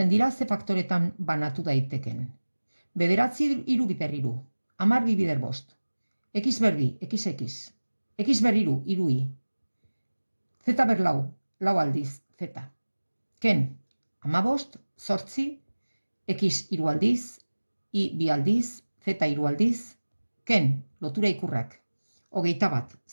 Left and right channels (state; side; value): inverted; both; correlation -1.00